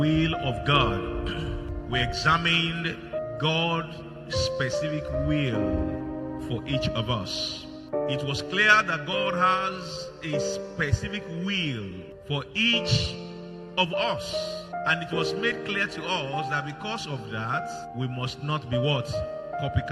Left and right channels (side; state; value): both; identical; correlation 1.00